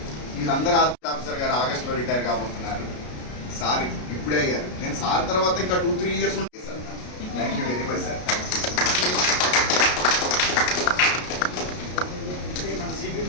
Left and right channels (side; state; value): right; late; 33 ms